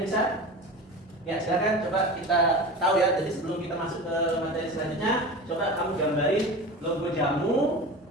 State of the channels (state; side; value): normal; both; correlation 0.31